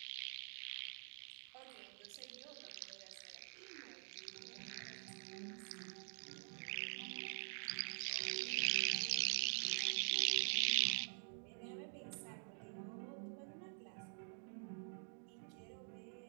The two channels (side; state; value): left; silent; digital silence